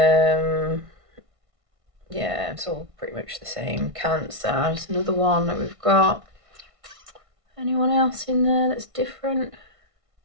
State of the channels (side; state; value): left; late; 1.5 ms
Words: Yeah, it's all pretty much the same. Cancer, there's another one that we've got. Anyone else in there that's different?